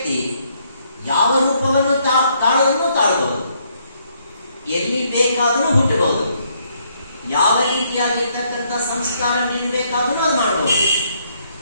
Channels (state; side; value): inverted; both; correlation -0.71